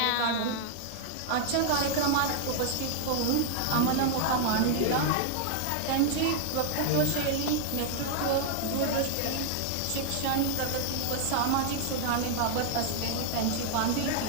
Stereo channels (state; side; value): different; both; correlation 0.00